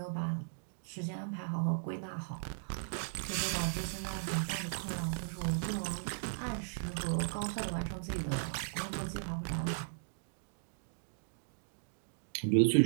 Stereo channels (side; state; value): left; silent; digital silence